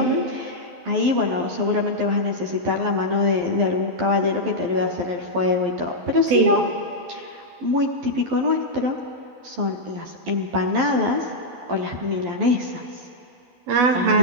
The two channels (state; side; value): late; left; 12 ms